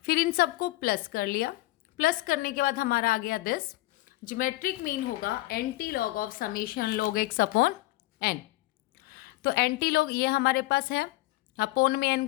फिर इन सबको प्लस कर लिया। प्लस करने के बाद हमारा आ गया दिस। ज्योमेट्रिक मीन होगा anti log of summation log x upon n। तो एंटी लॉग ये हमारे पास है, अपोन में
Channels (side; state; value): right; quieter; 19.3 dB